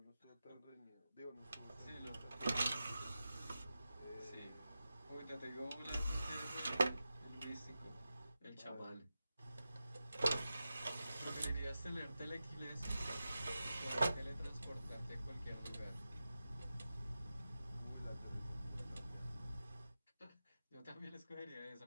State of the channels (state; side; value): inverted; both; correlation -0.92